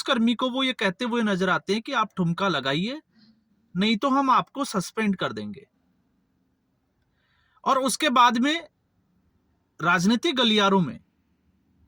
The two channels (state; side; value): identical; both; correlation 1.00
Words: को वो ये कहते हुए नजर आते हैं कि आप ठुमका लगाइए, नहीं तो हम आपको सस्पेंड कर देंगे। और उसके बाद में राजनीतिक गलियारों में